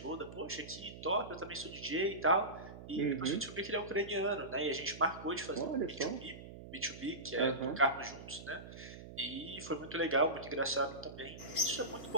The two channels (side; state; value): right; noise; hum, 13 dB below the sound